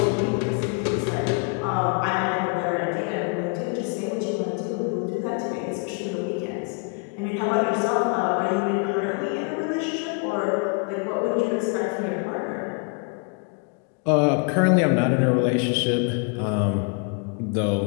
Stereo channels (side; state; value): right; quieter; 35.5 dB